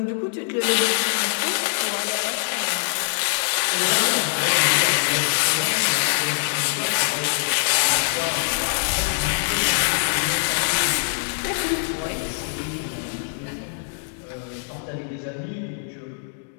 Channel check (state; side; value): silent; right; digital silence